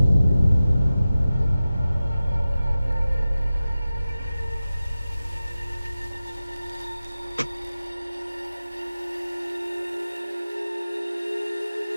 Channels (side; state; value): both; inverted; correlation -0.95